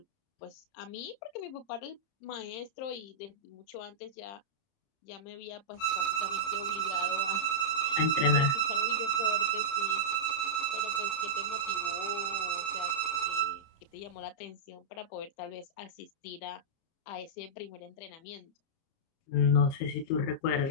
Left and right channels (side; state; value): right; late; 29 ms